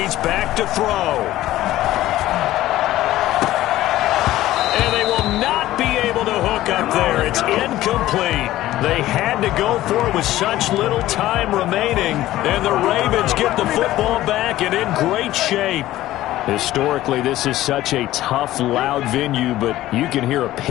back to throw. And they will not be able to hook up there. It's incomplete. They had to go for it with such little time remaining, and the Ravens get the football back and in great shape. Historically, this is such a tough, loud venue, but you can hear a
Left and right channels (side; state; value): right; quieter; 15.1 dB